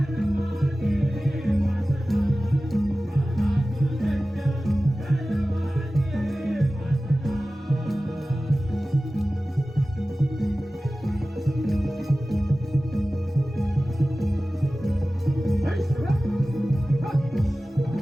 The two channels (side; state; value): both; normal; correlation 0.96